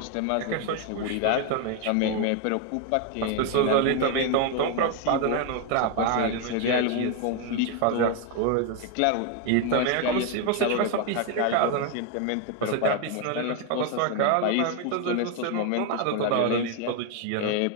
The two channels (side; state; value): both; different; correlation 0.01